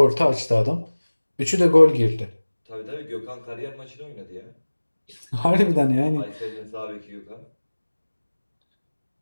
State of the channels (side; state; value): both; inverted; correlation -1.00